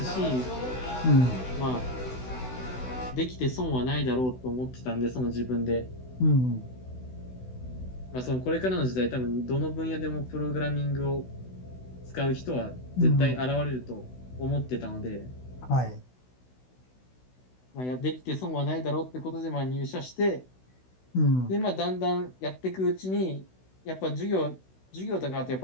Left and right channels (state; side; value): late; right; 16 ms